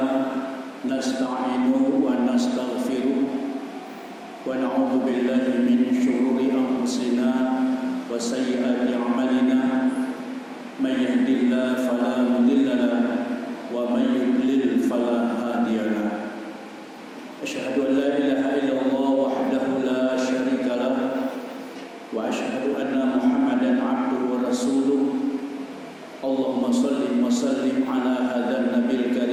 nasta'inuhu wa nastaghfiruh wa na'udzu billahi min shururi anfusina wa sayyiati a'malina may yahdihillahu fala mudilla lahu wa may yudlil fala hadiya lahu. Asyhadu an la ilaha illallah wahdahu la syarika lahu wa asyhadu anna Muhammadan 'abduhu wa rasuluh. Allahumma salli wa sallim ala hadzal nabiyil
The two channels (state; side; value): identical; both; correlation 1.00